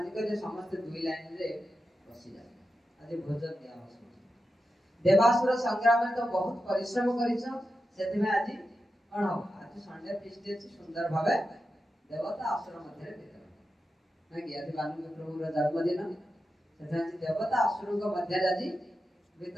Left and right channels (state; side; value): normal; both; correlation 0.90